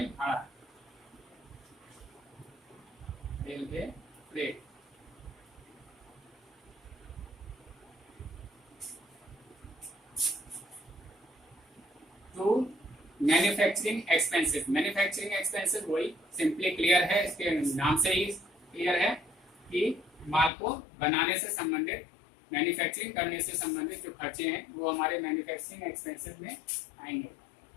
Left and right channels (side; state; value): right; drops out; at 20.5 s